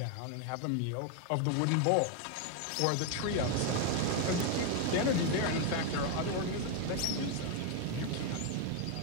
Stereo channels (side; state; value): both; different; correlation 0.01